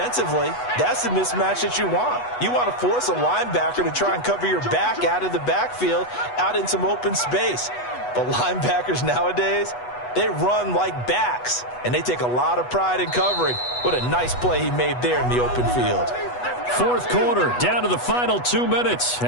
that's the mismatch that you want. You want to force a linebacker to try and cover your back out of the backfield, out in some open space. But linebackers nowadays, they run like backs, and they take a lot of pride in covering. What a nice play he made there in the open field. 4th quarter, down to the final 2 minutes,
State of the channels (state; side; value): late; right; 8.1 ms